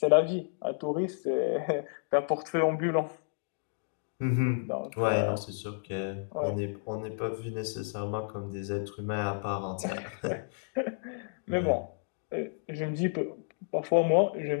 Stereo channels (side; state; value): right; silent; digital silence